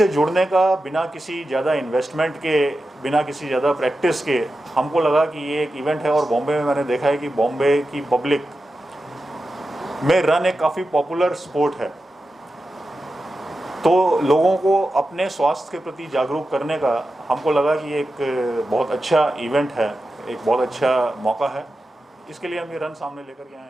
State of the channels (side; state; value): both; normal; correlation 0.91